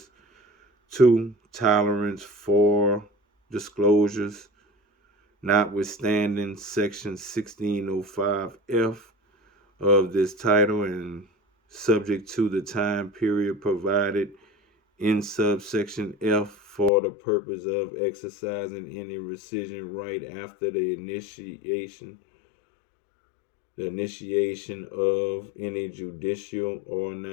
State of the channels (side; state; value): right; drops out; at 16.9 s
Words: 2. Tolerance for disclosures. Notwithstanding Section 1605F of this title and subject to the time period provided in subsection F for the purpose of exercising any rescission right after the initiation of any judicial or